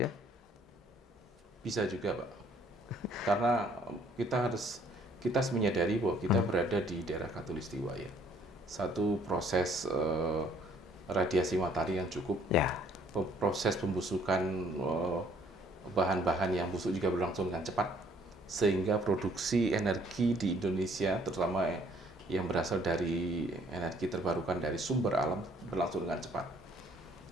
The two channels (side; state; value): both; normal; correlation 0.62